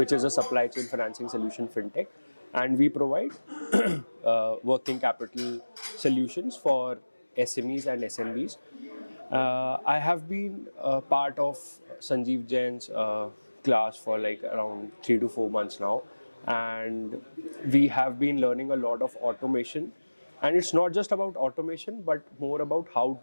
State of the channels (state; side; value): inverted; both; correlation -1.00